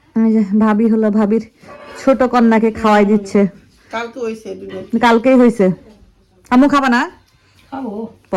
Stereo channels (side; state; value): both; identical; correlation 1.00